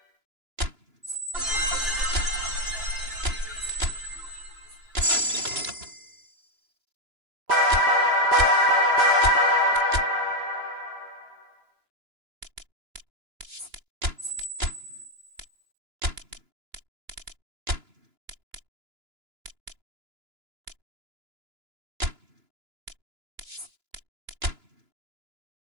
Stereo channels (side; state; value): left; late; 2.9 ms